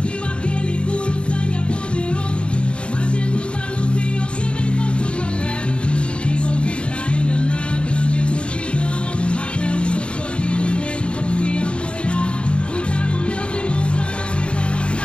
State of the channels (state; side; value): late; right; 0.055 ms